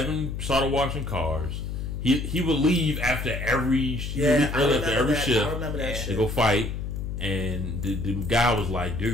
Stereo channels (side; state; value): left; noise; hum, 5 dB below the sound